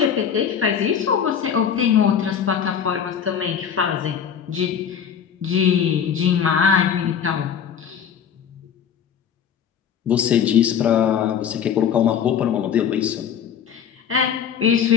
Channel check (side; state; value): right; quieter; 8.0 dB